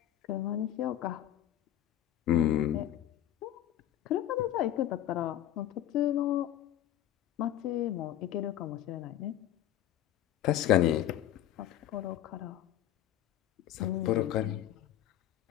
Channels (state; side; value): quieter; right; 12.3 dB